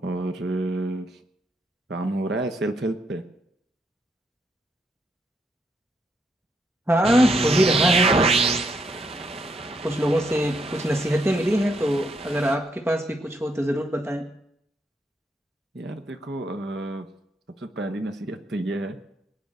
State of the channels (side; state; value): both; normal; correlation 0.76